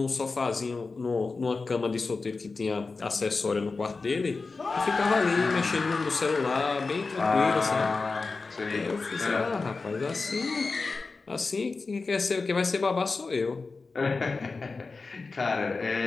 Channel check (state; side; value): quieter; right; 4.1 dB